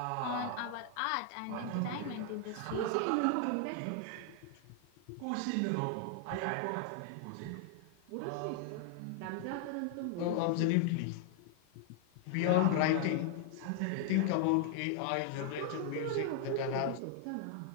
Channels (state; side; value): different; both; correlation 0.00